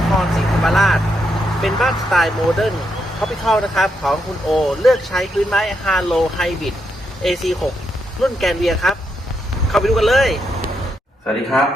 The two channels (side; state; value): both; normal; correlation 0.81